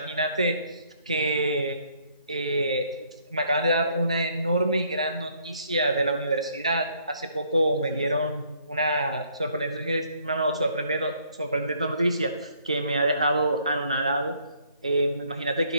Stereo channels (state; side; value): inverted; both; correlation -0.66